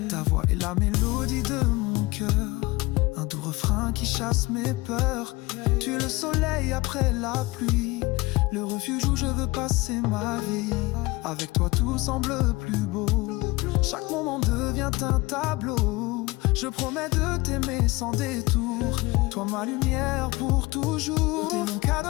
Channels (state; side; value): quieter; right; 22.0 dB